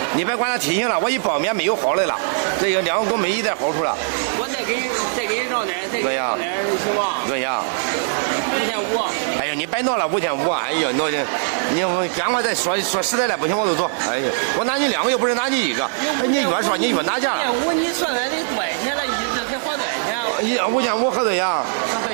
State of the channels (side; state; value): left; silent; 65 dB below the other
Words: 你别管它体型了，我一包面没有好的了，这个两个都没一点好处了。我再给你让点，对呀，行吗？对呀。5500。哎呀，你别闹了5500，哎呀，你赶快再说实在的，不行我就走。哎呀，我拿你两个又不是拿你一个，哎，你越说你越拿价了。你算来得多少钱了？一直才花多少钱？5500合多少呀？合多少